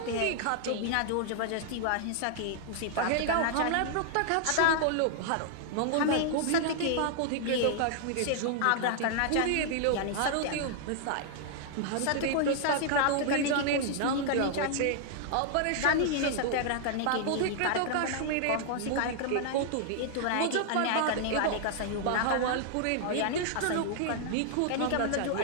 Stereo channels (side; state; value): both; different; correlation -0.01